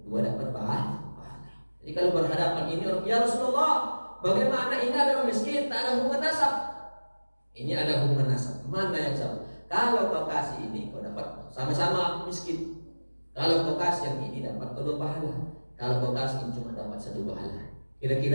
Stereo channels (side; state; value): both; inverted; correlation -1.00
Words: dua dapat pahala. Jadi kalau berhadapan ini, ya Rasulullah, bagaimana ini ada orang miskin, tak ada hubungan nasab. Ini ada hubungan nasab. Mana yang sama? Kalau kau kasih ini, kau dapat sama-sama miskin. Kalau kau kasih yang ini, dapat kedua pahala. Kalau kau kasih ini cuma dapat satu pahala.